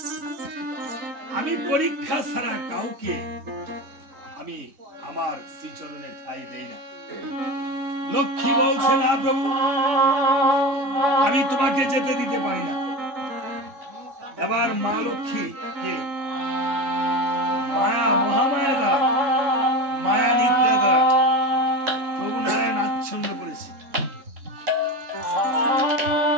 আমি পরীক্ষা ছাড়া কাউকে আমি আমার শ্রীচরণে ঠাঁই দেই না লক্ষ্মী বলছে না প্রভু, আমি তোমাকে যেতে দিতে পারি না। এবার মা লক্ষ্মী কে মায়া, মহামায়া দ্বারা, মায়া নিদ্রা দ্বারা প্রভু নারায়ণ আচ্ছন্ন করেছে।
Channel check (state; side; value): late; left; 3.5 ms